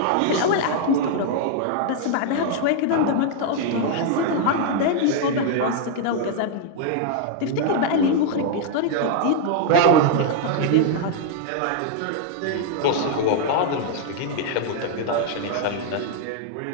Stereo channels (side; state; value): both; different; correlation 0.00